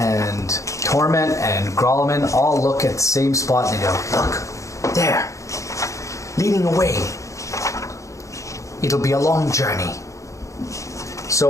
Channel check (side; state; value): right; late; 0.15 ms